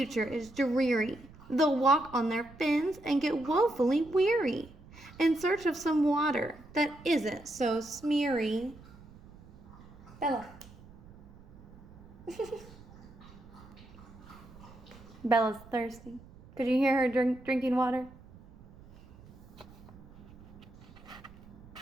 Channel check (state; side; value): noise; right; rumble, 21 dB below the sound